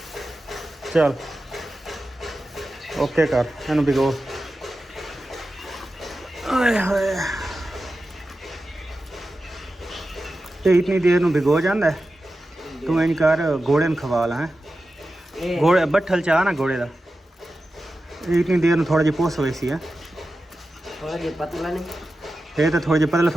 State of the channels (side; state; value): both; normal; correlation 0.93